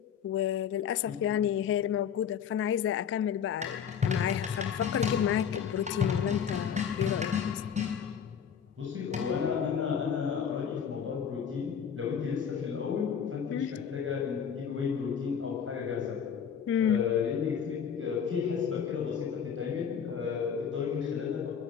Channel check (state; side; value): quieter; right; 7.7 dB